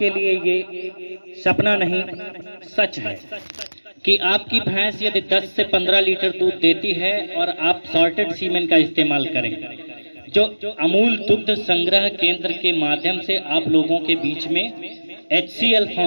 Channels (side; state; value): both; inverted; correlation -1.00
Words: लिए ये सपना नहीं सच है कि आपकी भैंस यदि 10 से 15 लीटर दूध देती है और आप सॉर्टेड सीमेन का इस्तेमाल करें, जो अमूल दुग्ध संग्रह केंद्र के माध्यम से आप लोगों के बीच में HCL